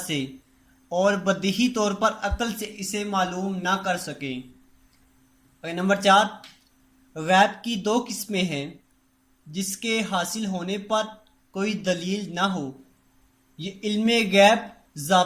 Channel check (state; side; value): identical; both; correlation 1.00